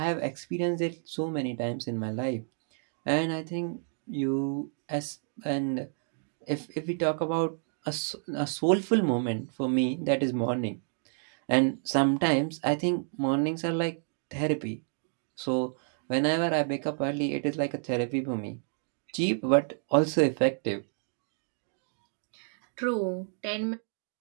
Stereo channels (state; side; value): silent; left; 58 dB below the other